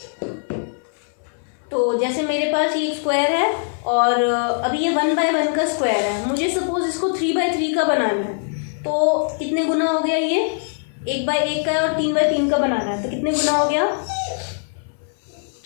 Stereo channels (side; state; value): right; silent; 62 dB below the other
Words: तो जैसे मेरे पास ये एक स्क्वायर है और अभी ये 1/1 का स्क्वायर है, मुझे सपोज इसको 3/3 का बनाना है, तो कितने गुना हो गया, ये 1/1 का और 3/3 का बनाना है तो कितने गुना हो गया,